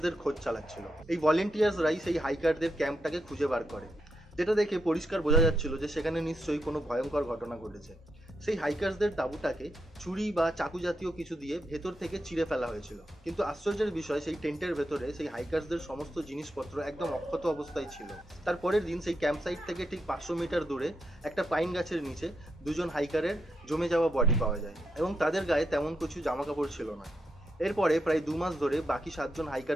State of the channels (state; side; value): normal; both; correlation 0.83